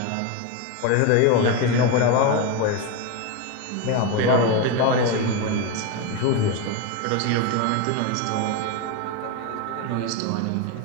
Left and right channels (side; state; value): both; different; correlation 0.03